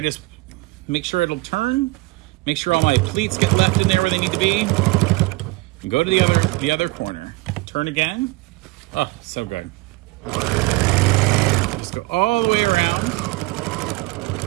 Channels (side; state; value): left; quieter; 22.6 dB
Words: just make sure it'll turn. Make sure all my pleats get left in there where they need to be. And go to the other corner. Turn again. Oh, so good. Just go all the way around.